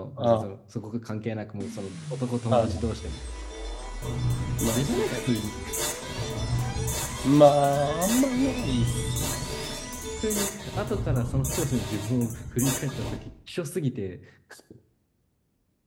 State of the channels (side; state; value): both; identical; correlation 1.00